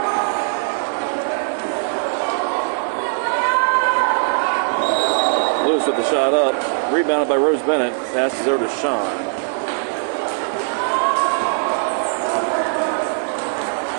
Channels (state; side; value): silent; left; digital silence